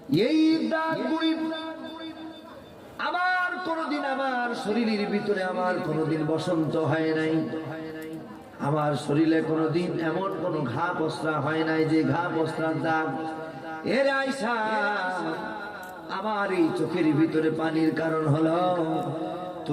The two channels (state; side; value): identical; both; correlation 1.00